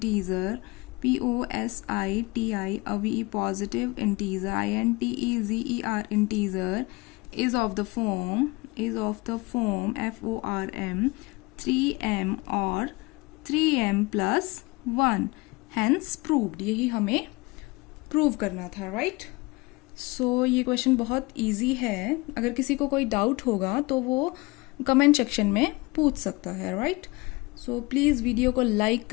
POSITI, a positive integer, INTEZER integer is of the form FORM 3m और 3m प्लस 1, hence proved, यही हमें प्रूव करना था, राइट। सो ये क्वेश्चन बहुत इजी है, अगर किसी को कोई डाउट होगा तो वो कमेंट सेक्शन में पूछ सकता है, राइट। सो प्लीज़ वीडियो को लाइक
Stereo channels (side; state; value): right; quieter; 24.4 dB